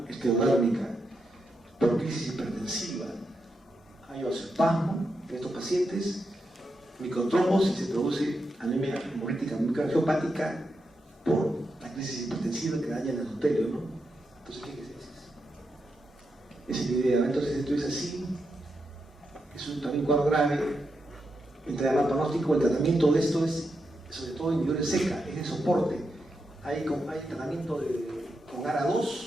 esclerodérmica por crisis hipertensiva. Hay vasoespasmo en estos pacientes, microtrombosis, se produce anemia hemolítica microangiopática por la crisis hipertensiva que daña el endotelio, ¿no? Entonces, ¿qué es eso? Esa es la idea. Entonces, esto es así, es un también cuadro grave, entre mal pronóstico. El tratamiento de esto es, sobre todo en individuales seca, es de soporte. Hay tratamiento con ARA2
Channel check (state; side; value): normal; both; correlation 0.85